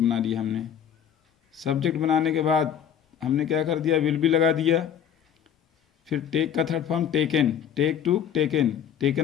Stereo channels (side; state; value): right; quieter; 8.9 dB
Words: लिया हमने। सब्जेक्ट बनाने के बाद हमने क्या कर दिया? विल भी लगा दिया। फिर टेक का third form taken, take to taken,